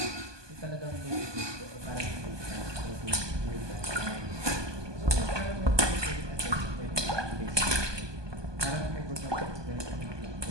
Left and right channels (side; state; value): left; late; 1.2 ms